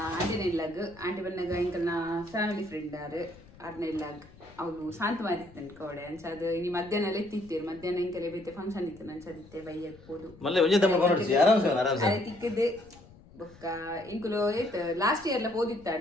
ಆಂಟಿನ ಇಲ್ಲಾಗ ಆಂಟಿ ಬಂದಾಗ ಎಂಕಲ್ನ ಫ್ಯಾಮಿಲಿ ಫ್ರೆಂಡ್ ಆರು ಆರ್ನ ಇಲ್ಲಾಗ ಅವಳು ಶಾಂತ ಮಾರಿತ್ತನ್ ಕವಡೆ ಅನ್ಸದು ಇನ್ನು ಮಧ್ಯಾಹ್ನ ಎಲ್ಲ ಎತ್ತಿತ್ತೇರು. ಮಧ್ಯಾಹ್ನ ಎಂಕಲೆ ಬೈತೆ ಫಂಕ್ಷನ್ ಇತ್ತು ಅನ್ಸದಿತ್ತೆ ಬೈಯಕ್ ಹೋದು ಅದೇ ತಿಕ್ಕದೆ ಬೊಕ್ಕ ಇಂಕುಲು ಏತ್ ಲಾಸ್ಟ್ ಇಯರ್ ಲ ಪೋದಿತ್ತ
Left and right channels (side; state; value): left; noise; rumble, 23 dB below the sound